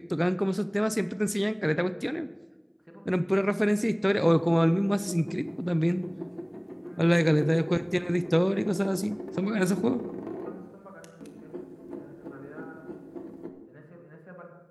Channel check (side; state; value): both; identical; correlation 1.00